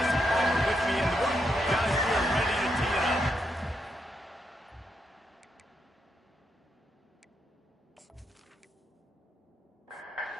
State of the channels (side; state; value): both; normal; correlation 0.81